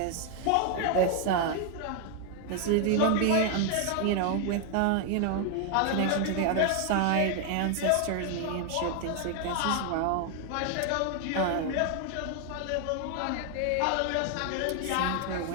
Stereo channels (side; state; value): both; different; correlation 0.00